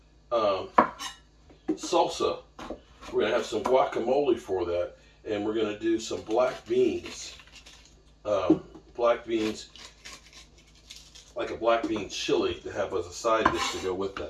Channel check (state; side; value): identical; both; correlation 1.00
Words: salsa. We're going to have some guacamole for that. And we're going to do some black beans. Black beans, like a black bean chili to have as a side dish to go with